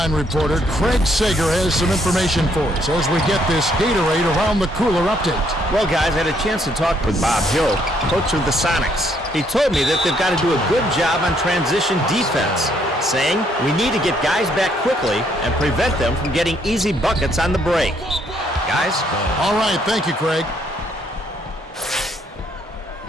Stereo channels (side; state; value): both; normal; correlation 0.70